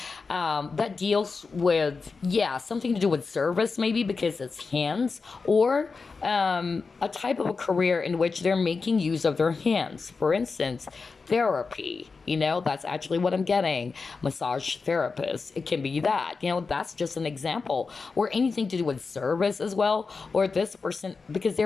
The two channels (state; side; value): quieter; right; 4.5 dB